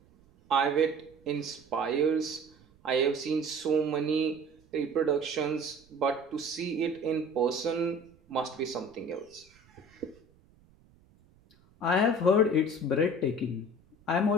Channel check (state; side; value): noise; right; rumble, 30 dB below the sound